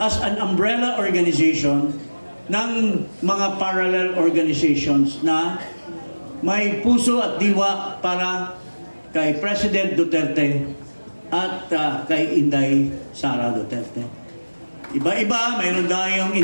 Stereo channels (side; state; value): both; inverted; correlation -1.00